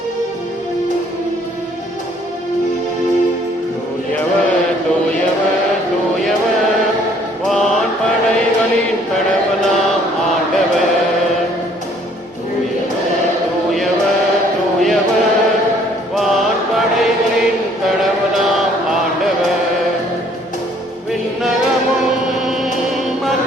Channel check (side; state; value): both; normal; correlation 0.61